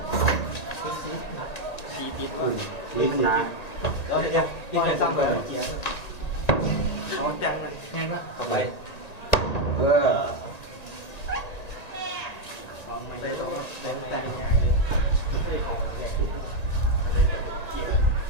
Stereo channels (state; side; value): late; right; 1.8 ms